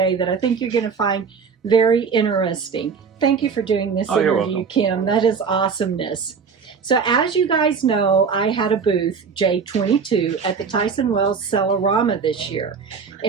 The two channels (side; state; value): left; quieter; 5.8 dB